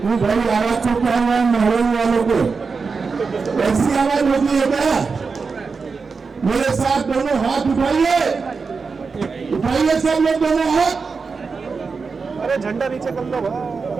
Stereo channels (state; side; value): quieter; left; 4.8 dB